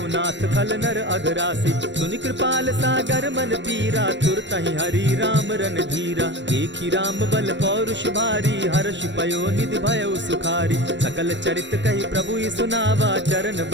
नाथ खल नर अघरासी। सुनि कृपाल सागर मन पीरा, तुरतहि हरि राम रन धीरा। देखी राम बल पौरुष भारी, हर्ष पयो निधि भयउ सुखारी। सकल चरित कहि प्रभु सुनावा, चरण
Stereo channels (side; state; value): left; late; 0.53 ms